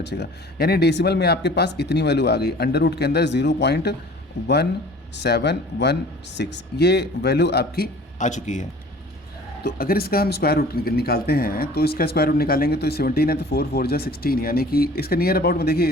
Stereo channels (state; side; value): normal; both; correlation 0.47